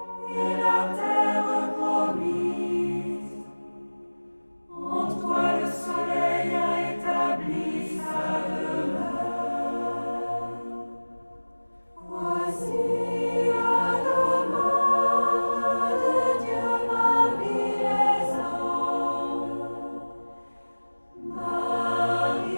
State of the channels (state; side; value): inverted; both; correlation -1.00